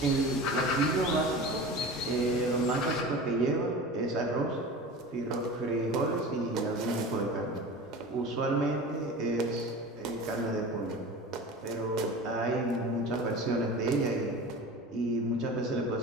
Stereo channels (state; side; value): normal; both; correlation 0.34